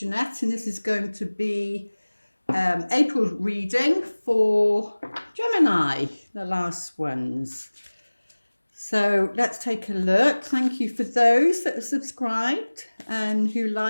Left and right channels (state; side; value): inverted; both; correlation -1.00